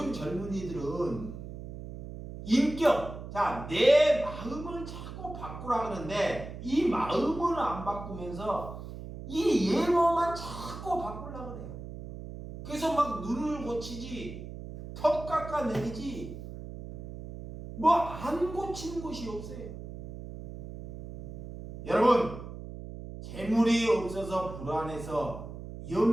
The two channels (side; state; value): right; noise; hum, 11 dB below the sound